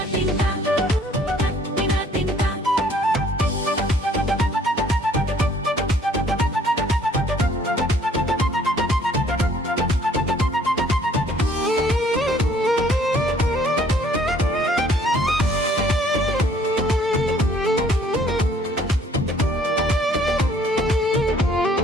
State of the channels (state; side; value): normal; both; correlation 0.59